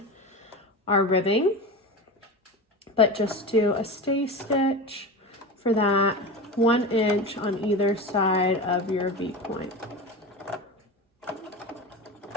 our ribbing. But just do a stay stitch for that 1 inch on either side of your V point.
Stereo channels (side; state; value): both; normal; correlation 0.27